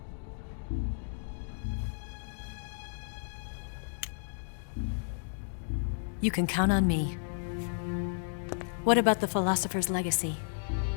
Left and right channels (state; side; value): silent; right; digital silence